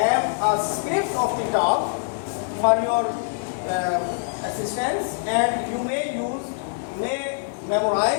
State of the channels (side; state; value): right; silent; 59 dB below the other